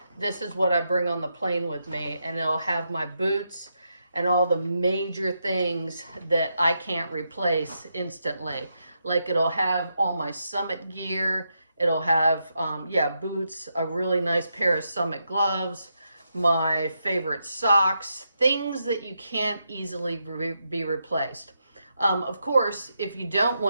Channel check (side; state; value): both; inverted; correlation -0.83